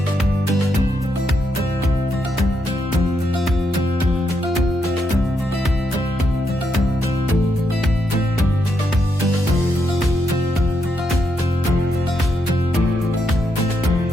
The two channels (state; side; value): normal; both; correlation 0.80